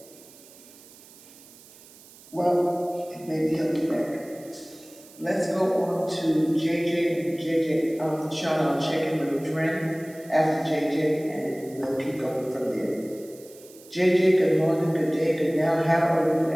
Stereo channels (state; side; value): noise; right; hiss, 22 dB below the sound